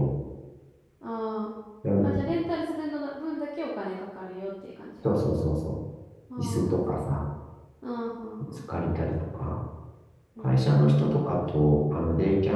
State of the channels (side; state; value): both; identical; correlation 1.00